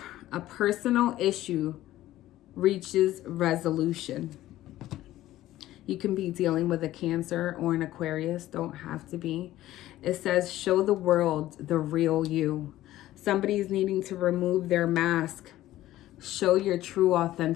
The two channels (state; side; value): quieter; right; 14.8 dB